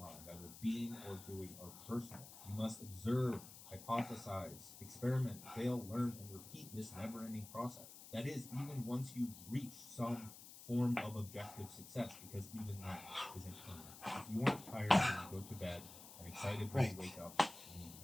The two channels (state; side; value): noise; left; hiss, 15 dB below the sound